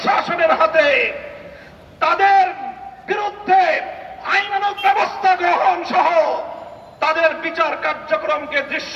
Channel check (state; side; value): identical; both; correlation 1.00